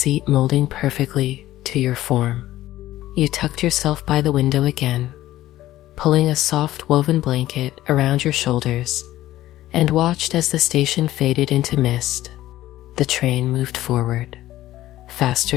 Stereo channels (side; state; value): right; quieter; 14.9 dB